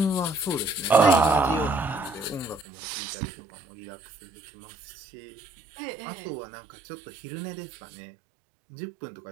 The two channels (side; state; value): left; drops out; at 2.7 s